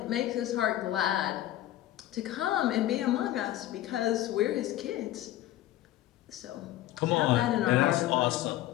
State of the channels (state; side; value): quieter; right; 14.2 dB